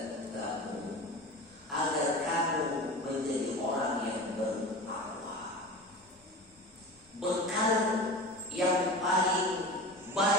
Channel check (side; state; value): both; normal; correlation 0.32